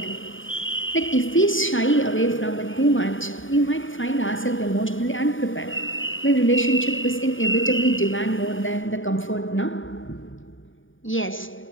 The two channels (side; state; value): right; late; 0.57 ms